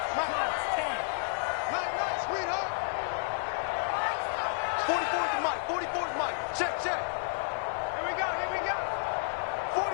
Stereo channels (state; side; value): silent; right; digital silence